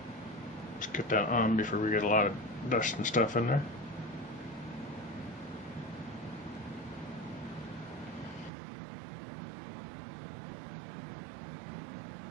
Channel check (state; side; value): drops out; left; at 8.5 s